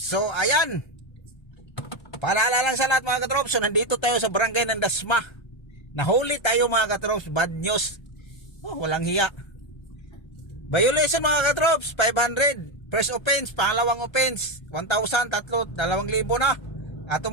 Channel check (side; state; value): right; late; 1.3 ms